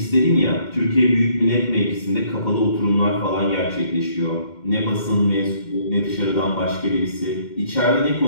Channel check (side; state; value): right; late; 2.1 ms